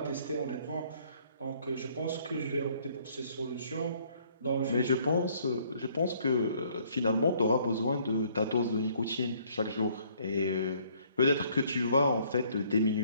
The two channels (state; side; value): inverted; both; correlation -0.63